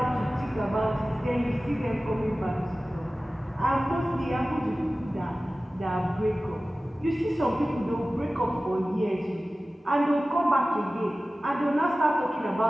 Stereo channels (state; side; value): normal; both; correlation 0.96